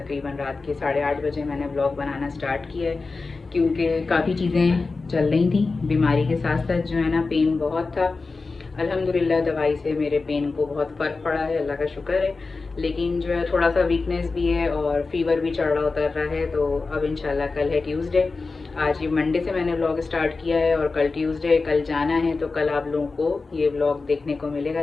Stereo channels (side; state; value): right; quieter; 4.0 dB